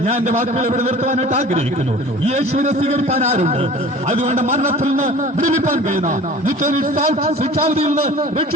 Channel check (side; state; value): both; normal; correlation 0.43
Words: ഞാൻ എന്റെ വാക്കുകൾ ഇവിടെ നിർത്തുവാനായിട്ട് ആഗ്രഹിക്കുന്നു. യേശുവിനെ സ്വീകരിക്കാൻ ആരുണ്ട്? അതുകൊണ്ട് മരണത്തിൽ നിന്ന് വിടുവിപ്പാൻ കഴിയുന്ന, ശിക്ഷാവിധിയിൽ നിന്ന്